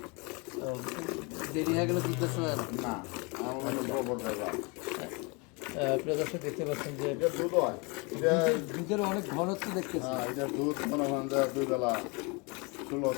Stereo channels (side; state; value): right; quieter; 29.7 dB